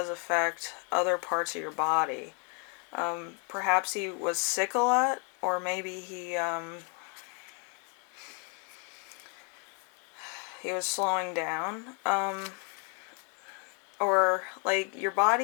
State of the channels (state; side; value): quieter; right; 37.2 dB